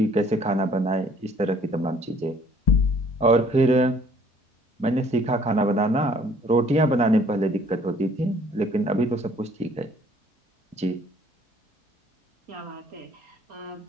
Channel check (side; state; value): both; normal; correlation 0.58